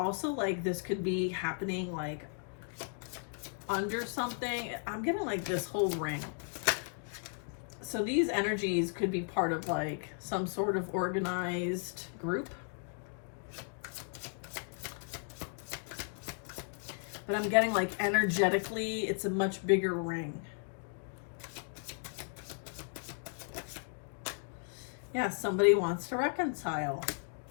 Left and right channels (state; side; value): silent; right; 54 dB below the other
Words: like this could be happening like under something. I'm getting like this whole ring. So these energies could be part of like some sort of organized group. But I'm getting like energetically, it's a much bigger ring. Yeah, somebody wants to reconcile.